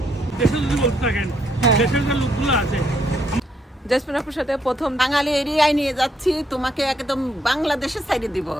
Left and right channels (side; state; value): both; normal; correlation 0.73